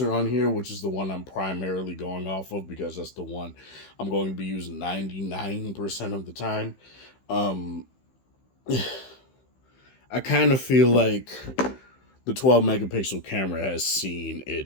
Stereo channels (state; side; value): late; right; 15 ms